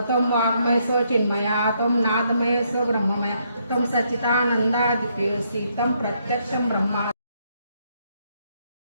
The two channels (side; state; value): both; inverted; correlation -0.74